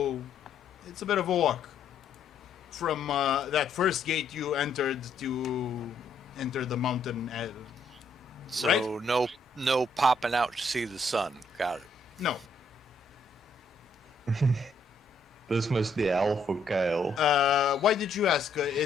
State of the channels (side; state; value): right; quieter; 3.0 dB